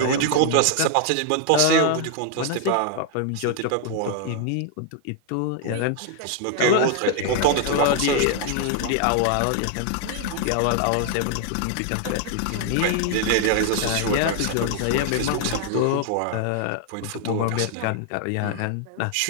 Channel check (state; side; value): different; both; correlation 0.00